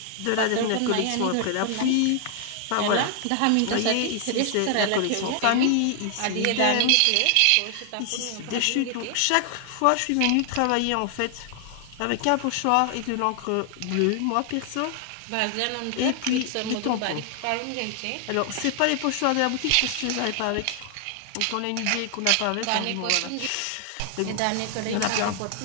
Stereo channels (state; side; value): different; both; correlation 0.00